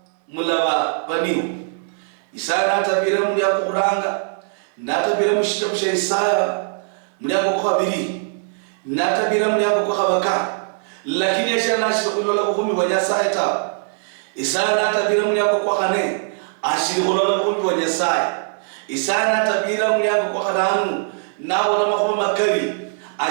mulaba baniho Isaya natabira muri yakuranga natabira mushitabo Isaya muri yakokwa biri natabira muri yakokwa baka lakini yesha nashira kulola buhumi bwa Nyasaye ta Isaya natabira muri yakokwa kane ashiri kulola buhumi bwa Nyasaye Isaya natabira muri yakokwa karanu nawo na mahoma makari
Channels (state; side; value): silent; left; 65 dB below the other